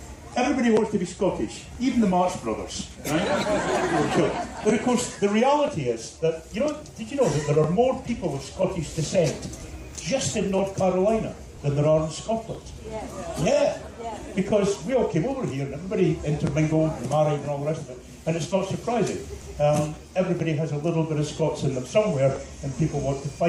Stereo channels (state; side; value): identical; both; correlation 1.00